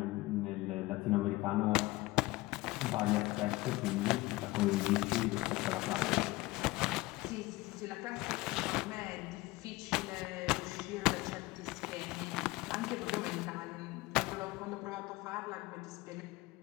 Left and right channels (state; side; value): quieter; right; 20.2 dB